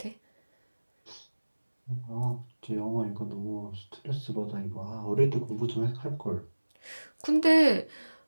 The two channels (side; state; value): both; inverted; correlation -1.00